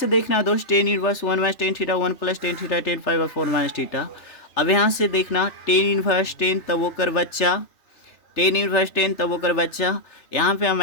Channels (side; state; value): right; late; 3.3 ms